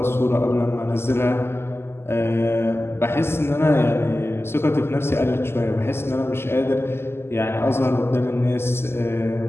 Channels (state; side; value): late; right; 0.12 ms